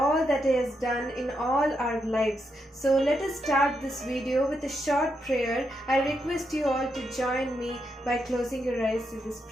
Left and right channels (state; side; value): normal; both; correlation 0.82